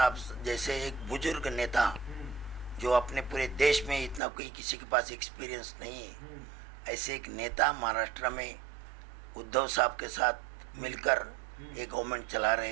जैसे एक बुजुर्ग नेता, जो अपने पूरे देश में इतना कोई किसी के पास एक्सपीरियंस नहीं है, ऐसे एक नेता महाराष्ट्र में उद्धव साहब के साथ मिलकर एक गवर्नमेंट चला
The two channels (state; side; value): drops out; left; at 4.2 s